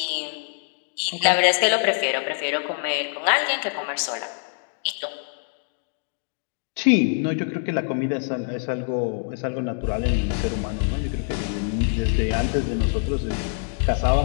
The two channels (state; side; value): silent; right; 62 dB below the other